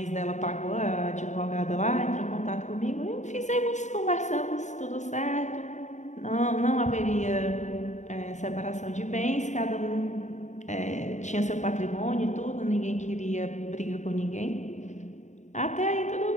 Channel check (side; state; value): right; late; 0.34 ms